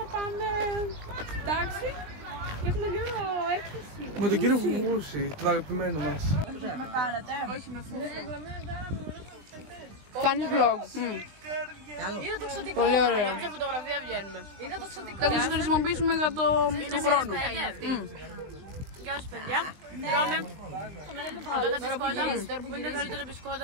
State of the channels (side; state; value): left; late; 20 ms